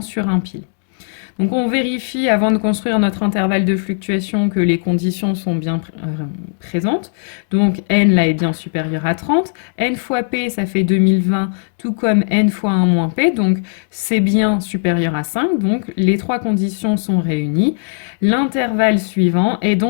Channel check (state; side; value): silent; right; digital silence